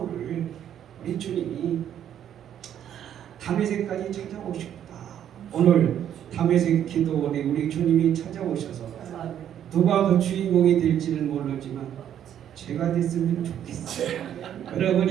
우리 주님이 다메섹까지 찾아오셨다. 오늘 다메섹 기도원에 우리 주님이 찾아오셔서 누가 그 주인공이 될지는 모르지만 제가 됐으면 좋겠어요.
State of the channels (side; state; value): left; quieter; 10.1 dB